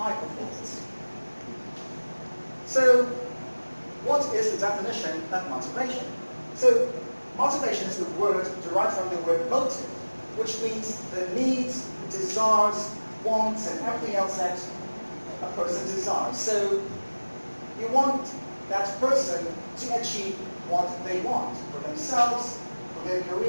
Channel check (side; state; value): both; inverted; correlation -1.00